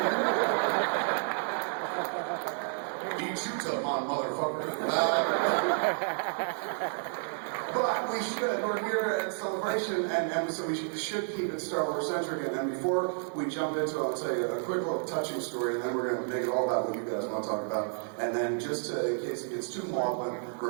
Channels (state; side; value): silent; left; 55 dB below the other